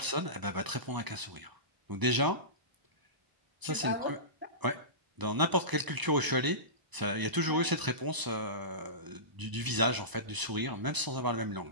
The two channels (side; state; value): left; late; 1.0 ms